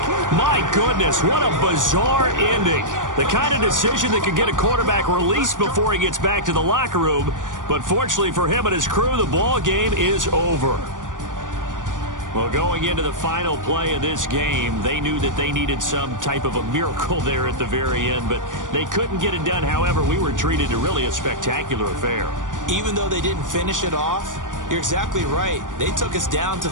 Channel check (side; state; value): left; late; 0.88 ms